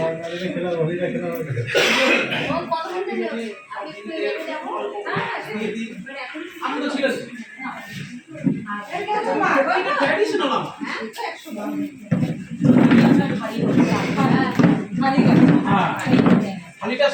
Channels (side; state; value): both; identical; correlation 1.00